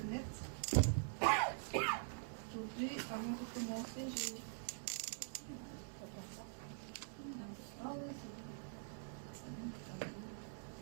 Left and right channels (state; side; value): silent; left; digital silence